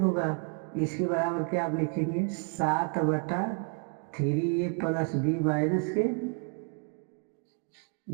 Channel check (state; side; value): quieter; left; 36.6 dB